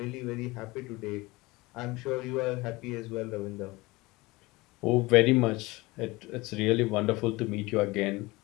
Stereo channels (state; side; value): quieter; right; 22.0 dB